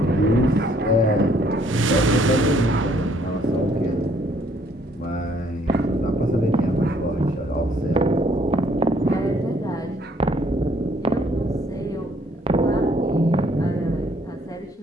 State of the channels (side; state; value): both; normal; correlation 0.64